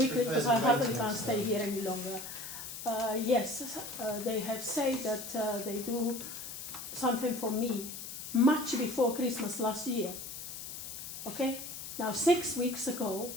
because I hardly can't stay here any longer. Yes, they have said that they do something for me much before Christmas last year. Okay? Now 6 weeks ago,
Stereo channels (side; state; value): left; noise; hiss, 9 dB below the sound